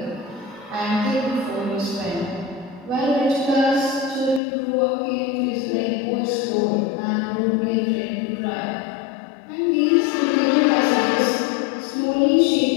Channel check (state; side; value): drops out; right; at 4.4 s